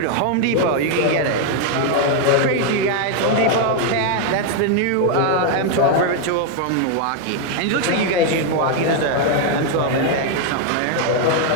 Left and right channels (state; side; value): different; both; correlation 0.01